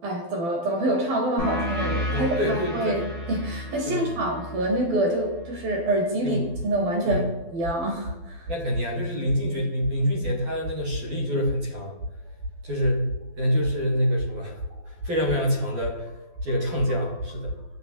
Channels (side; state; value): left; late; 12 ms